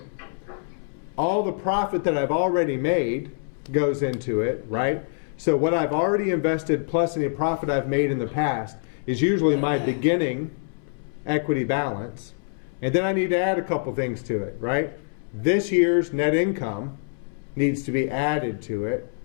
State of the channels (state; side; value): silent; right; 62 dB below the other